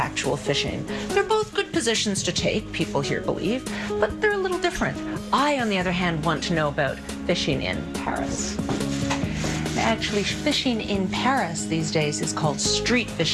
fishing. They're both good positions to take, people here believe, but they're a little different. I, on the other hand, want to know about fishing in Paris. Actually, fishing in Paris these days is called street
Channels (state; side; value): identical; both; correlation 1.00